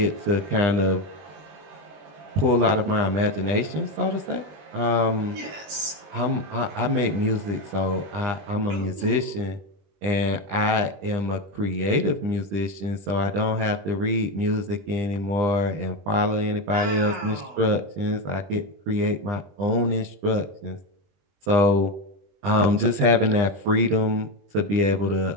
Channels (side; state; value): left; late; 20 ms